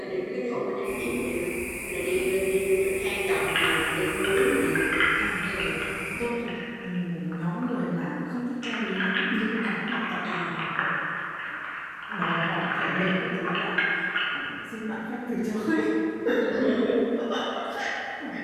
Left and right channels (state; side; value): identical; both; correlation 1.00